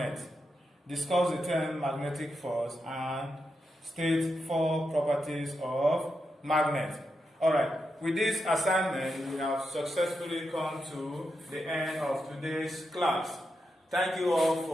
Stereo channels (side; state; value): both; normal; correlation 0.86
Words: Discuss the term magnetic force and state 4 properties of magnet. Alright, with this assignment, we have successfully come to the end of today's class. Thank you all